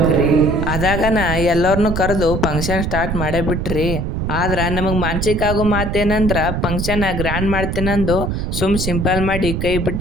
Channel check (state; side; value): noise; right; rumble, 2 dB below the sound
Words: ಅದಾಗನ ಎಲ್ಲರನ್ನು ಕರೆದು ಫಂಕ್ಷನ್ ಸ್ಟಾರ್ಟ್ ಮಾಡೇ ಬಿಟ್ರಿ. ಆದ್ರ ನಮಗ್ ಮಾನಸಿಕ ಆಗೋ ಮಾತೇನಂದ್ರ ಫಂಕ್ಷನ್ ಗ್ರ್ಯಾಂಡ್ ಮಾಡ್ತೇನಂದು ಸಿಂಪಲ್ ಮಾಡಿ ಕೈ